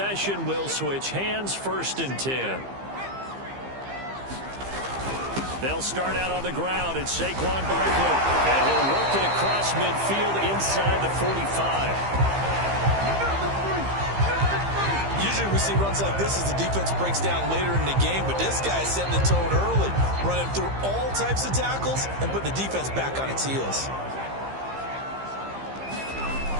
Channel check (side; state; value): left; late; 15 ms